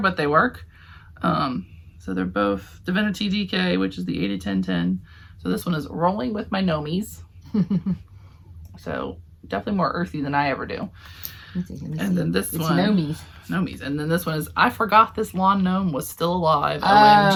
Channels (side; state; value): both; identical; correlation 1.00